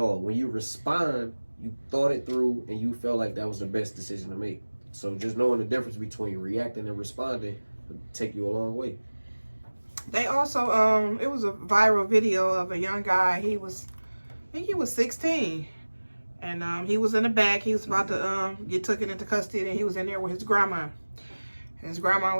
When you respond, you thought it through and you felt like that was the best decision to make. So just knowing the difference between reacting and responding will take you a long way. They also, it was a viral video of a young guy. I think he was 16. And he was in the back. He was about to get taken into custody, and he was in there with his grandma. And his grandma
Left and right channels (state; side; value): inverted; both; correlation -1.00